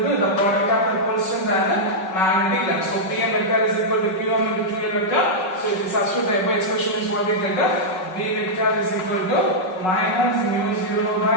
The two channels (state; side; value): late; right; 5.4 ms